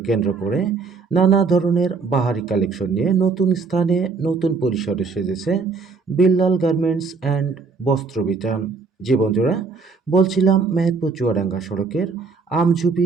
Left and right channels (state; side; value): quieter; left; 4.6 dB